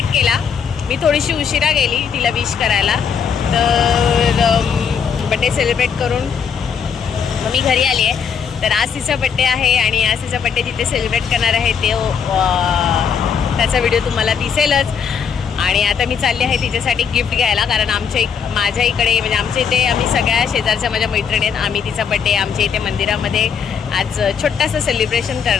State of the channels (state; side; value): quieter; right; 6.9 dB